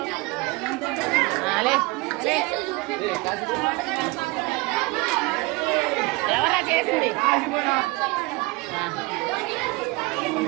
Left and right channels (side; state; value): left; quieter; 24.3 dB